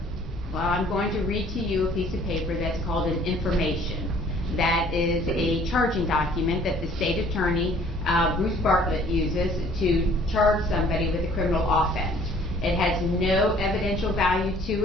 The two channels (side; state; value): both; normal; correlation 0.56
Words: Well, I'm going to read to you a piece of paper that's called an information. That is a charging document that the state attorney, Bruce Bartlett, uses to charge somebody with a criminal offense. It has no evidential value to